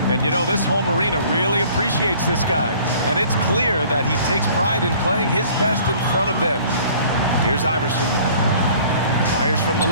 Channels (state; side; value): inverted; both; correlation -0.52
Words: And you know, this home arena really appreciates this guy. And it's clear that he takes pride in playing his best in front of them. Here's Iverson. Fires from the